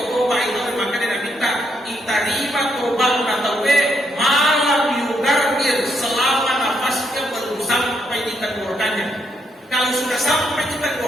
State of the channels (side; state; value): both; normal; correlation 0.76